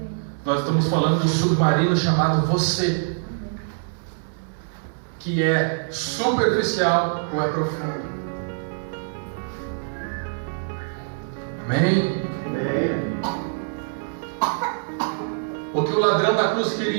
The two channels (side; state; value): left; silent; digital silence